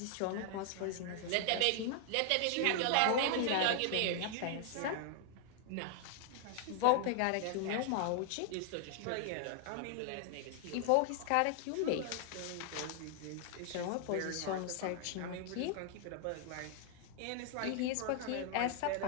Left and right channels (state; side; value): different; both; correlation 0.00